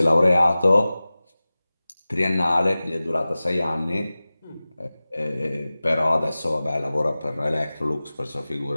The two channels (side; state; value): both; inverted; correlation -0.97